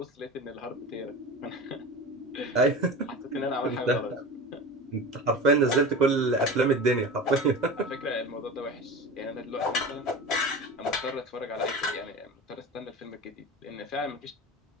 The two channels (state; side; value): normal; both; correlation 0.31